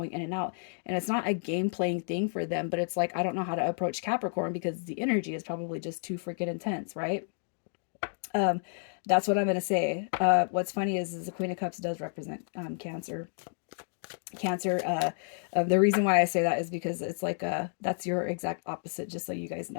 in and out. And it's not a game playing thing for them, but it's like, I don't know how to approach Capricorn because the energy is probably just too freaking intense, right? Um, that's what I'm going to say. What's funny is the Queen of Cups does represent Cancer. Cancer, the reason why I say that is because it's like, that's your exact opposite, just so you guys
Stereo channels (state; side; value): silent; right; digital silence